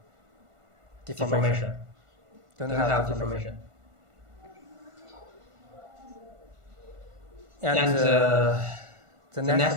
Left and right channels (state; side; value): late; left; 1.5 ms